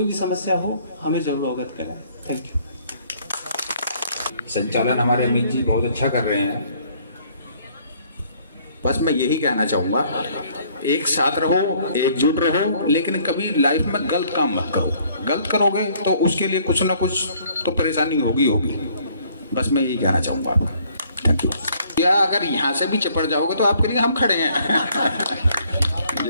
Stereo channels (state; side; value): inverted; both; correlation -0.62